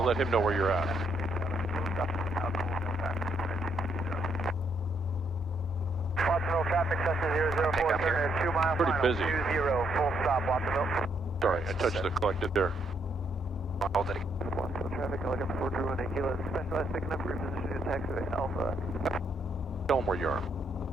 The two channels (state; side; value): normal; both; correlation 0.74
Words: let him know where you're at. Watsonville traffic, Cessna 004, turn 2 miles. Pretty busy. 20, full stop, Watsonville. Sorry, I touched the collected there. Hold it again. Watsonville traffic, Helicopter 421 Kilo, specialized picking up repositioning taxiway Alpha. Tell him where you are.